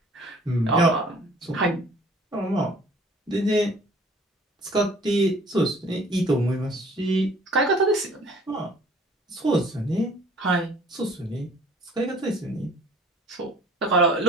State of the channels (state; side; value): normal; both; correlation 0.53